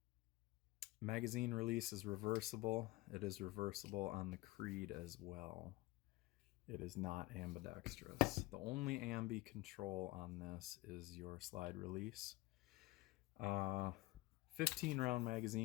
Magazine release is reversible. It is reversible on the Creed as well. It is not ambidextrous. The only ambi control on this is your slide release. 15-round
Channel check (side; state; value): right; quieter; 20.3 dB